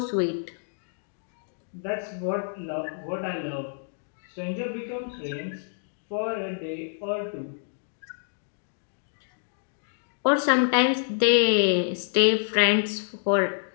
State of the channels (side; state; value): right; silent; digital silence